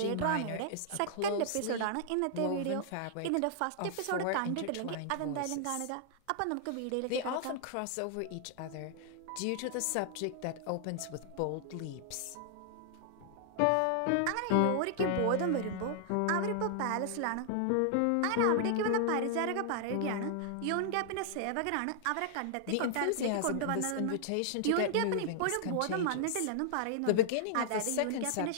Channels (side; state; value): both; different; correlation -0.01